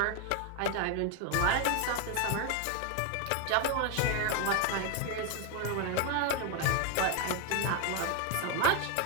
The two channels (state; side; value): different; both; correlation 0.01